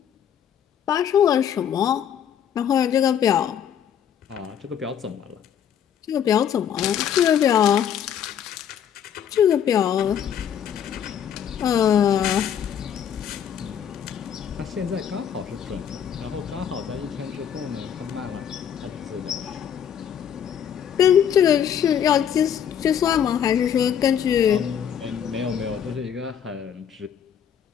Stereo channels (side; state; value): right; quieter; 8.9 dB